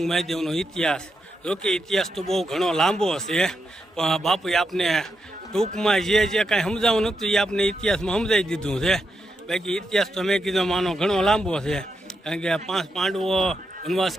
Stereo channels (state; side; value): normal; both; correlation 0.84